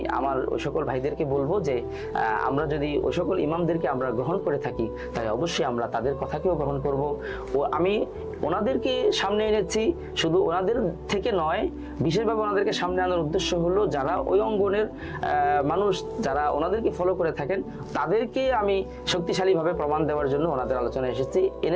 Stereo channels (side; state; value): both; identical; correlation 1.00